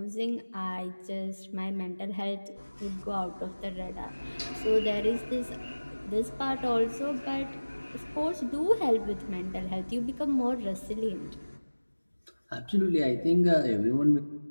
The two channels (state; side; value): inverted; both; correlation -1.00